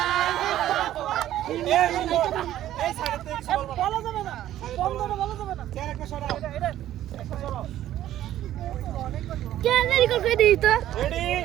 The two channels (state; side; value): quieter; left; 12.8 dB